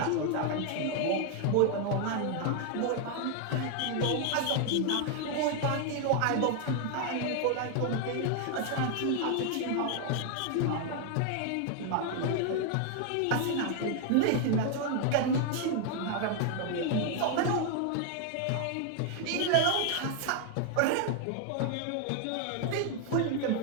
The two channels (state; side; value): different; both; correlation 0.00